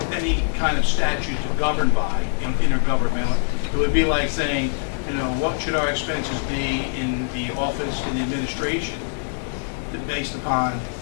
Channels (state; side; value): silent; right; digital silence